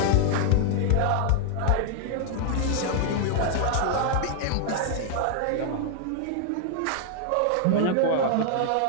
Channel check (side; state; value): both; different; correlation -0.01